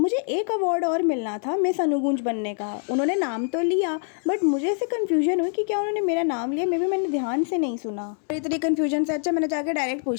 एक अवार्ड और मिलना था मिस अनुगुंज बनने का. उन्होंने नाम तो लिया बट मुझे ऐसे कन्फ्यूजन हुई कि क्या उन्होंने मेरा नाम लिया, मे भी मैंने ध्यान से नहीं सुना. इतनी कन्फ्यूजन से अच्छा मैंने जाकर डायरेक्ट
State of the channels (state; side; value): silent; right; 58 dB below the other